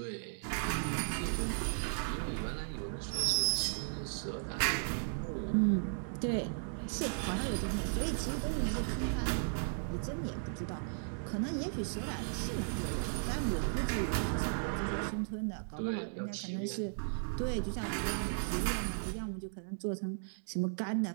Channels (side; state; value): left; silent; digital silence